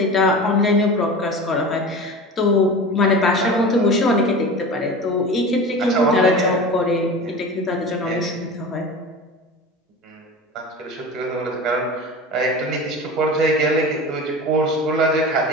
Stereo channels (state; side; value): normal; both; correlation 0.32